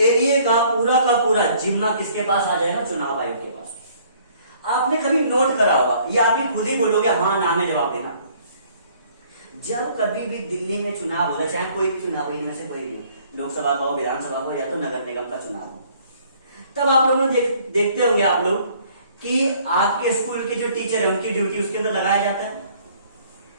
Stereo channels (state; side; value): inverted; both; correlation -0.59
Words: एरिया का पूरा जिम्मा किसके पास आ जाएगा, चुनाव आयोग के पास। आपने कभी नोट करा होगा, ये आप ही खुद ही बोलोगे हाँ ना में जवाब देना, जब कभी भी दिल्ली में चुनाव होता है, चाहे कोई भी चुनाव हो, इनमें से कोई भी, लोकसभा का हो, विधानसभा का हो, या तो नगर निगम का चुनाव हो, तब आप लोगों ने देखते होंगे आप लोग कि आपके स्कूल के जो टीचर है उनकी ड्यूटी उसके अंदर लगाया जाता है,